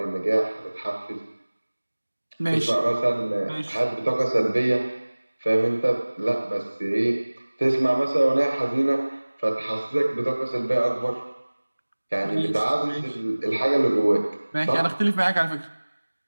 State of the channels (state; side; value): inverted; both; correlation -1.00